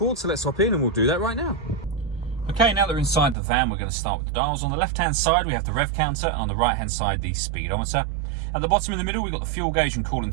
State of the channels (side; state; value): left; drops out; at 3.4 s